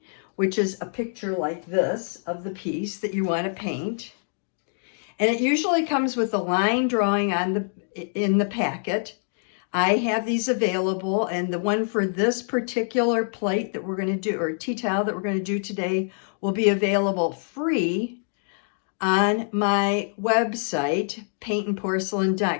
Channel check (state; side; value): silent; right; digital silence